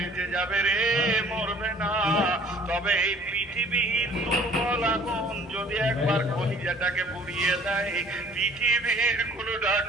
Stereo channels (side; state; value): both; normal; correlation 0.53